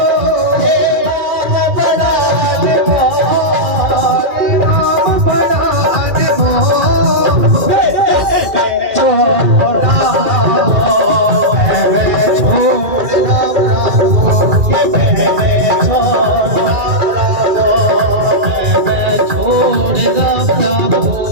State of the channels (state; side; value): late; left; 2.3 ms